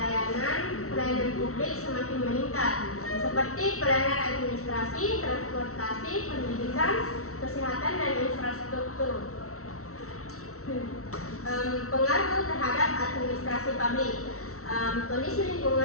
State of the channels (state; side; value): late; right; 0.64 ms